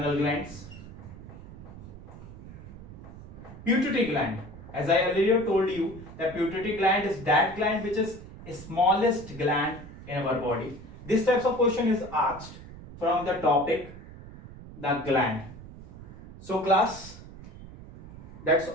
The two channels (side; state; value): right; noise; rumble, 15 dB below the sound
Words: glands. Pituitary gland. As I earlier told you, the pituitary gland is that gland which is the smallest gland in our body. This types of question is asked from the topic the gland. So class, that's